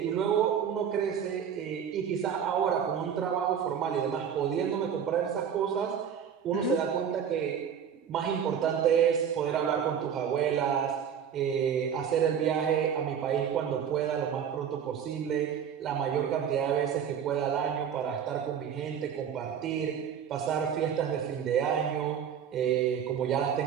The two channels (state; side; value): quieter; left; 8.1 dB